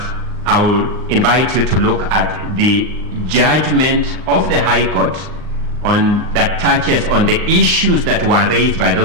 I will invite you to look at the judgment of the High Court that touches on the issues that were raised by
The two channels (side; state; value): left; late; 39 ms